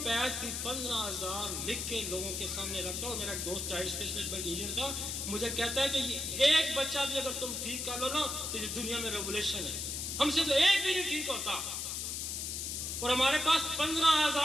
भी 15,000 लिख के लोगों के सामने रखता। और मेरा एक दोस्त चाइल्ड स्पेशलिस्ट टीचर था, मुझे कहता है कि ये एक बच्चा भी अगर तुम ठीक कर लो ना, तो ये दुनिया में रेवोल्यूशन है। हमसे तो एक भी नहीं ठीक होता। और हमारे पास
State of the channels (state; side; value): noise; left; hiss, 3 dB below the sound